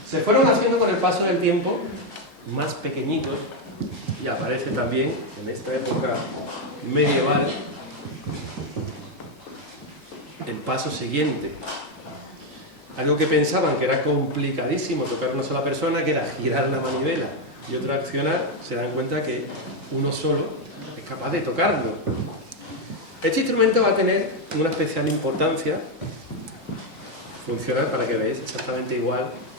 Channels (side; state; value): both; normal; correlation 0.04